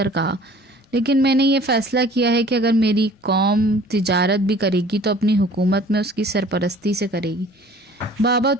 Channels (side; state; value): both; normal; correlation 0.50